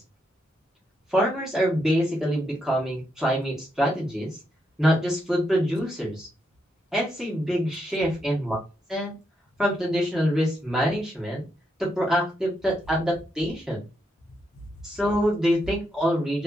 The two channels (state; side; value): normal; both; correlation 0.81